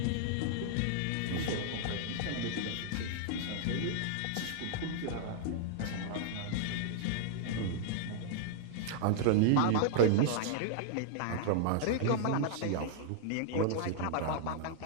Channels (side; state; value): both; different; correlation -0.01